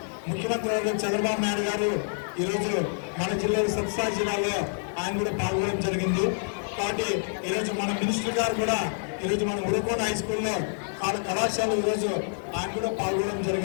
ముఖ్యమంత్రి వర్గం చంద్రబాబు నాయుడు గారు ఈరోజు మన జిల్లాలో సత్సాయి జిల్లాలో ఆయన కూడా పాల్గొనడం జరిగింది. కాబట్టి ఈరోజు మన మినిస్టర్ గారు కూడా ఈరోజు మన ఉరకోట హై స్కూల్లో కళాశాల ఈరోజు ఆయన కూడా పాల్గొనడం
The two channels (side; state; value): right; silent; digital silence